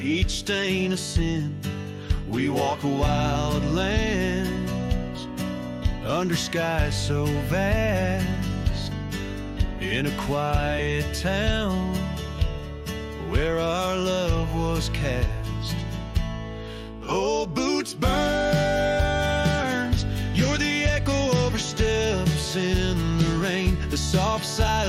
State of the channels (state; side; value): identical; both; correlation 1.00